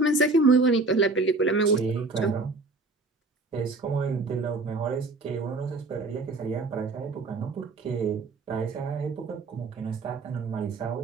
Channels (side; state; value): left; quieter; 3.5 dB